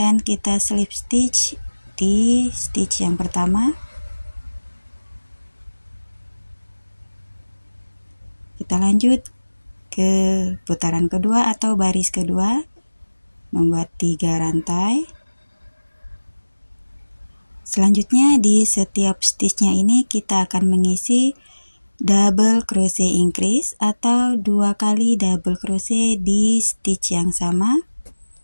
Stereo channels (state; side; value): inverted; both; correlation -1.00